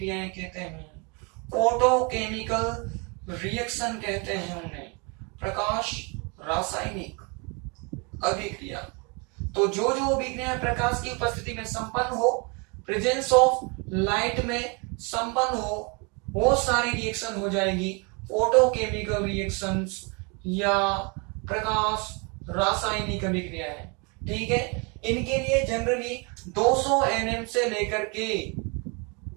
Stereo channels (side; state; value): left; quieter; 31.9 dB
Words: कहते हैं। फोटोकेमिकल रिएक्शन कहते हैं उन्हें, प्रकाश रासायनिक अभिक्रिया। तो जो जो अभिक्रियाएं प्रकाश की उपस्थिति में संपन्न हो, प्रेजेंस ऑफ लाइट में संपन्न हो, वो सारी रिएक्शन हो जाएगी फोटोकेमिकल रिएक्शंस या प्रकाश रासायनिक अभिक्रियाएं। ठीक है, इनके लिए जनरली 200 nm से लेकर के